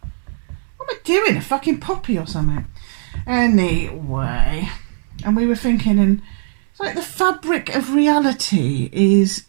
What am I doing? A fucking poppy or something? Anyway, and we were thinking, and it's like the fabric of reality is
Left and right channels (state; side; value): silent; left; digital silence